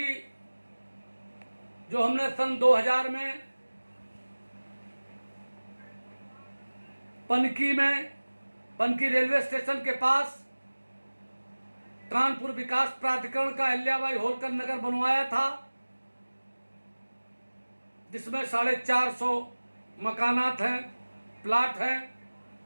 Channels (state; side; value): inverted; both; correlation -1.00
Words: जो हमने सन 2000 में पनकी रेलवे स्टेशन के पास कानपुर विकास प्राधिकरण का अहिल्याबाई होलकर नगर बनवाया था, जिसमें 450 मकानात हैं, प्लाट हैं।